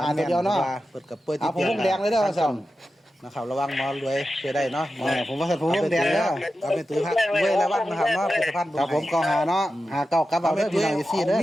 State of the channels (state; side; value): normal; both; correlation 0.92